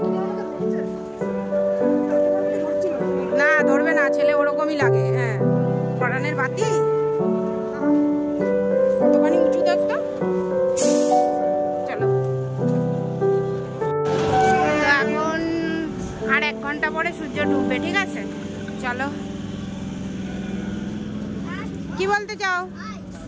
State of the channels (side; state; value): both; identical; correlation 1.00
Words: না ধরবে না, ছেলে ওরকমই লাগে। হ্যাঁ পরানের বাতি কতখানি উঁচু দেখতো। চলো, এখন আর 1 ঘন্টা পরে সূর্য ডুববে, ঠিক আছে? চলো, কি বলতে চাও?